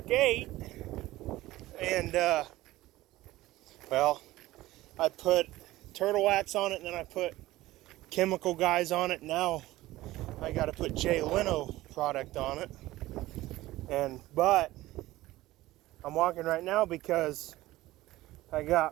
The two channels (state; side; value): quieter; left; 17.1 dB